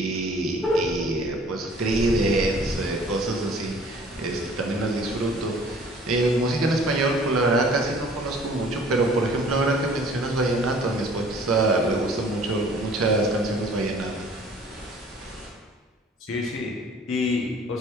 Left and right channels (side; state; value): both; normal; correlation 0.52